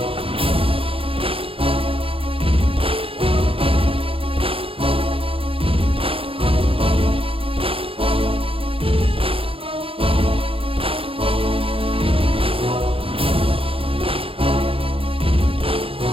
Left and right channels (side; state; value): left; late; 0.27 ms